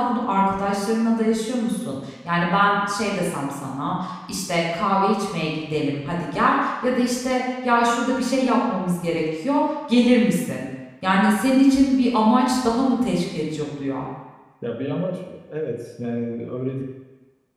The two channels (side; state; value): both; identical; correlation 1.00